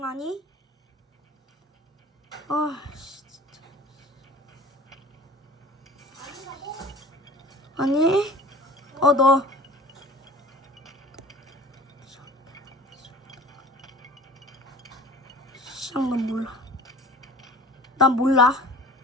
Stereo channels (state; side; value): normal; both; correlation 0.43